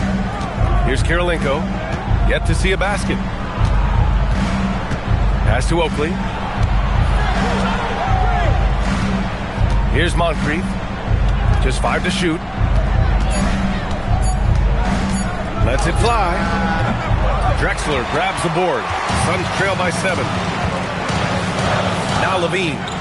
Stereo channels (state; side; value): identical; both; correlation 1.00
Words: Here's Kirilenko. Yet to see a basket. Pass to Oakley. Here's Moncrief. Just 5 to shoot. Lets it fly. Drexler grabs the board. Suns trail by 7. Now Levine.